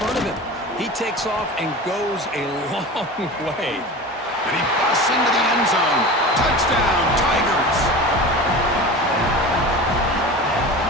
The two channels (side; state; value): both; normal; correlation 0.33